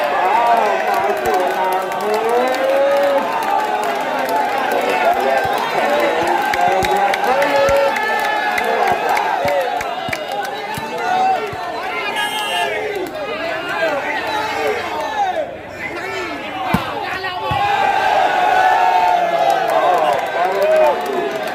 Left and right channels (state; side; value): identical; both; correlation 1.00